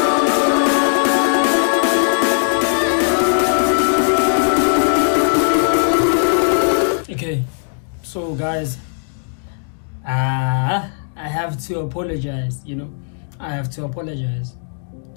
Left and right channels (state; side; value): silent; right; digital silence